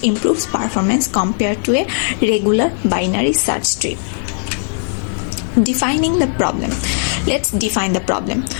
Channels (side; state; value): right; silent; 57 dB below the other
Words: improves performance compared to a regular binary search tree. Defining the problem. Let's define the problem.